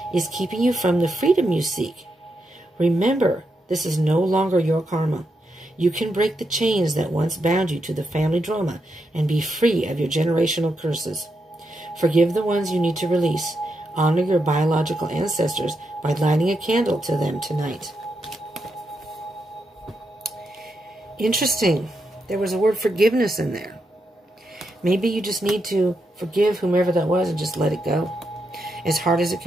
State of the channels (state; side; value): normal; both; correlation 0.83